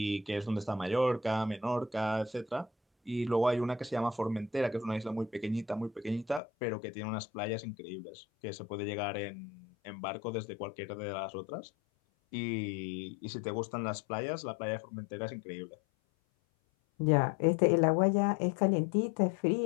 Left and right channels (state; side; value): drops out; right; at 6.4 s